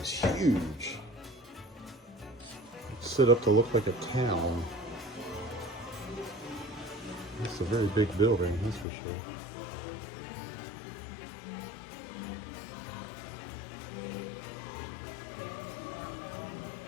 huge. It's set up to look like a town. It's a very big building, that's for sure.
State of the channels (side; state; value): right; drops out; at 8.8 s